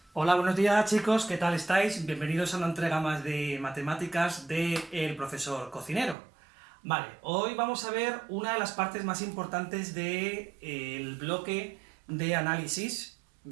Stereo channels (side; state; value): left; drops out; at 6.2 s